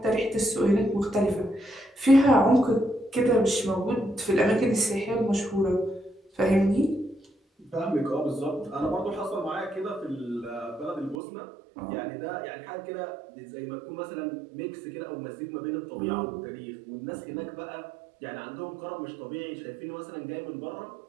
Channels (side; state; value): left; drops out; at 11.2 s